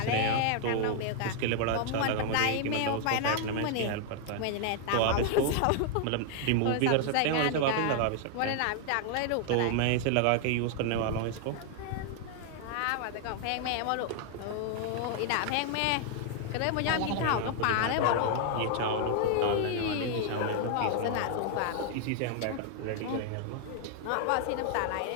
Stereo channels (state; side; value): different; both; correlation 0.00